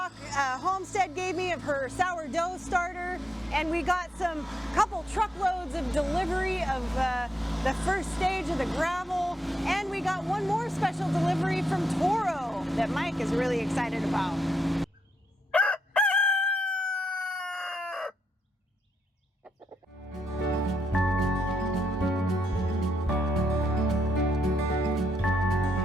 Homestead gave me of her sourdough starter, and we got some couple truckloads of delivery of the first stage of the gravel, and we got one more special delivery from Toro that Mike is really excited about.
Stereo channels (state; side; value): normal; both; correlation 0.80